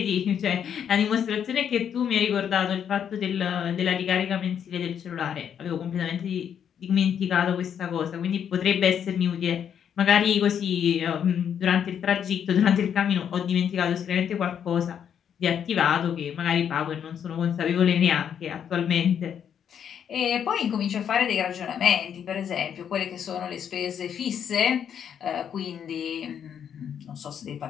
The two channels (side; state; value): right; quieter; 8.5 dB